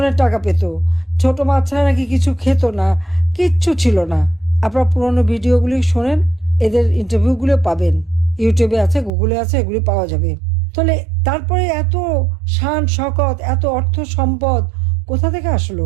টাকা পেত, ছোট মাছ ছাড়া নাকি কিছু খেত না, কিচ্ছু ছিল না। আপনারা পুরনো ভিডিওগুলি শোনেন, এদের ইন্টারভিউগুলো পাবেন, ইউটিউবে আছে, গুগলে আছে, এগুলি পাওয়া যাবে। তাহলে তারপরে এত শান শকত, এত অর্থ সম্পদ কোথা থেকে আসলো,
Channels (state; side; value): drops out; left; at 9.1 s